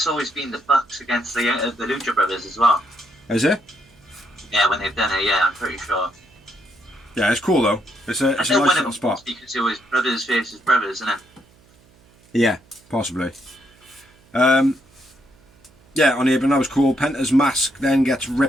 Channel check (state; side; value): noise; right; hum, 30 dB below the sound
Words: always been the Bucks against the Lucha Brothers as well. Is it? Yeah, when they've done it, yeah, I'm pretty sure. Yeah, it's cool though. It's a nice little spot. Because it was brothers versus brothers, isn't it? Yeah, possibly. Yeah, on the apron that was cool. Penta's mask then gets